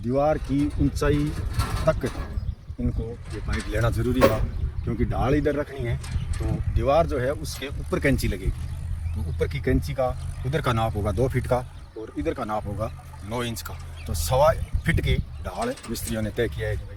की ऊंचाई तक इनको ये पाइप लेना ज़रूरी था, क्योंकि ढाल इधर रखनी है तो दीवार जो है उसके ऊपर कैंची लगेगी। तो ऊपर की कैंची का उधर का नाप होगा 2 फीट का और इधर का नाप होगा 9 इंच का। तो 1.25 फीट की ढाल मिस्त्रियों ने तय किया है कि भाई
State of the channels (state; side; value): identical; both; correlation 1.00